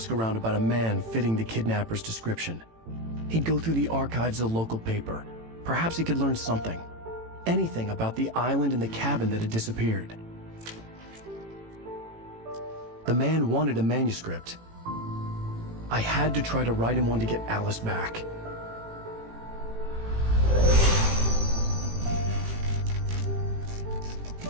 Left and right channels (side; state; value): left; late; 18 ms